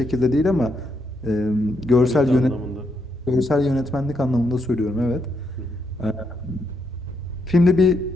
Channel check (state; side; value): normal; both; correlation 0.78